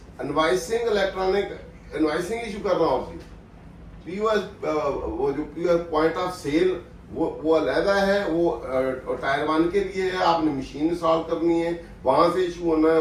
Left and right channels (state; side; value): identical; both; correlation 1.00